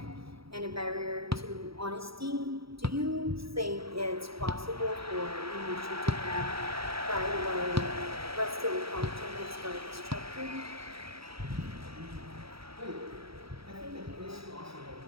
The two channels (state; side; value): late; left; 0.76 ms